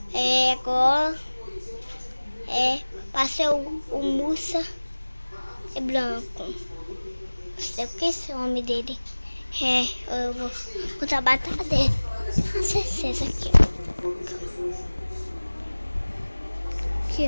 Agora. Passei o Musa é branco. Não sei o que é esse nome dele. Eu vou contar a batalha dele. Não sei se é esse aqui, ó. Aqui,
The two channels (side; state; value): both; inverted; correlation -1.00